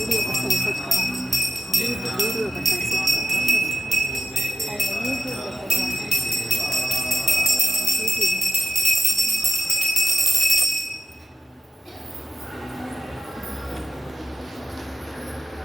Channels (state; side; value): normal; both; correlation 0.91